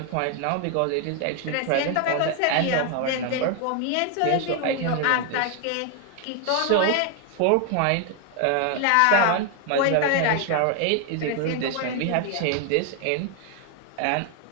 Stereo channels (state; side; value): different; both; correlation 0.00